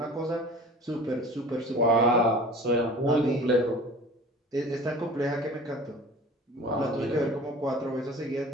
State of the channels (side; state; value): both; normal; correlation 0.41